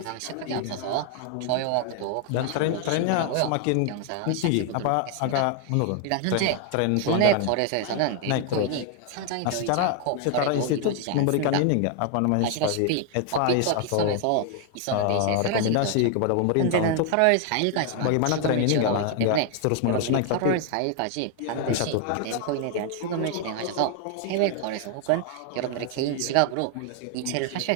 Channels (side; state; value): both; different; correlation 0.00